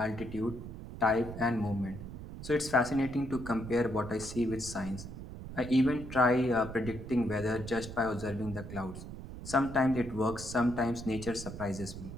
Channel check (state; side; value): noise; right; rumble, 10 dB below the sound